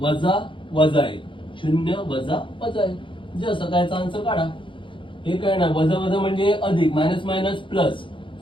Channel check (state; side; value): late; right; 0.25 ms